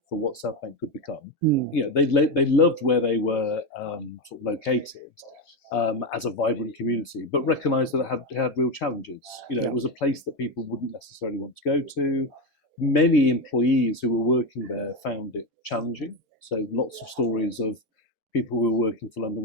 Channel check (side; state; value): both; normal; correlation 0.12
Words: for what South Bank could become. They loved where they were sort of located as a vibrant community, but recognised that it had real challenges. It was a place that people wouldn't necessarily want to go to. Many employees who were working there found it challenging. So lots of stories of people who were working for London